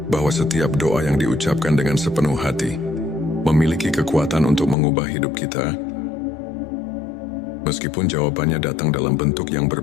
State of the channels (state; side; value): drops out; right; at 4.8 s